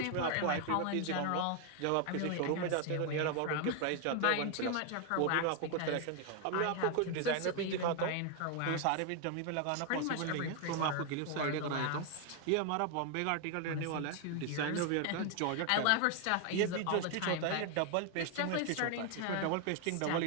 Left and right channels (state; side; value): different; both; correlation 0.01